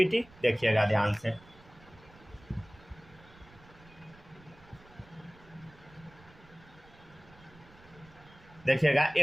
देखिएगा ध्यान से। देखिएगा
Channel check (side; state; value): right; noise; rumble, 24 dB below the sound